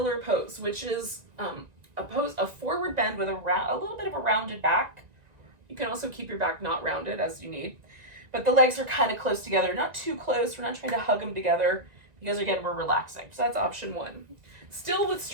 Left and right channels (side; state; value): left; late; 1.9 ms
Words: pose, which is a forward bend with a little bit of a rounded back You can also keep your back not rounded as you need. But the legs are kind of close together, not too close. We're not trying to hug them together because again, we're relaxing. So that's option one. Still with